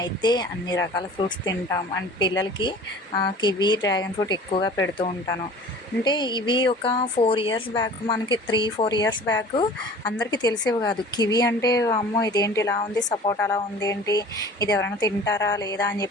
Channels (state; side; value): normal; both; correlation 0.43